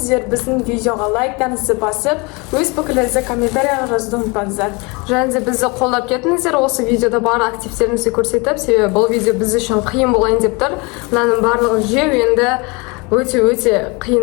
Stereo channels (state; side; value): quieter; right; 28.3 dB